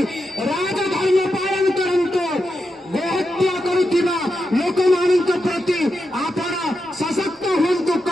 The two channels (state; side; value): normal; both; correlation 0.87